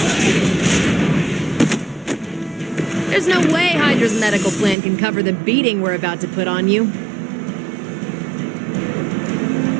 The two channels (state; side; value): drops out; left; at 4.8 s